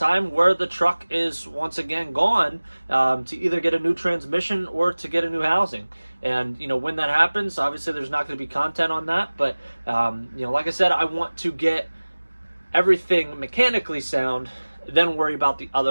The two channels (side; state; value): both; inverted; correlation -1.00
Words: where the truck is once again gone, to either get a new transmission or to get a new housing. And, you know, when that happens, obviously there's not going to be content on that. But, you know, like I said, I want to get everything mechanically sound, then worry about the